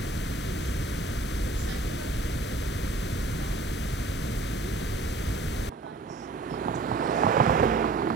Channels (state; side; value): quieter; left; 3.3 dB